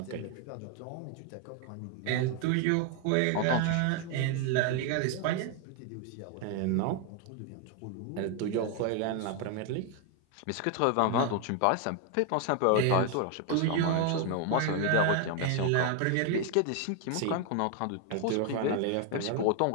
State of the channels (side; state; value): both; different; correlation 0.01